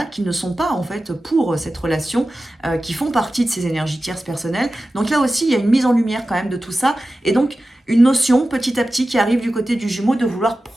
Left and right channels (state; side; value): normal; both; correlation 0.94